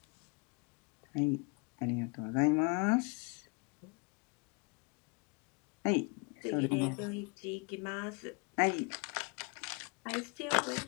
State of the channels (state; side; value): quieter; right; 32.5 dB